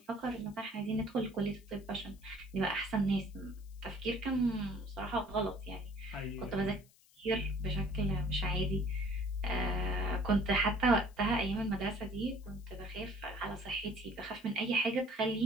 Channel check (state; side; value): noise; left; hiss, 28 dB below the sound